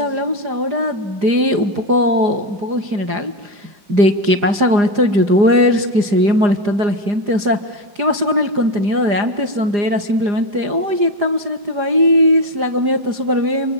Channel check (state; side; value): late; left; 4.9 ms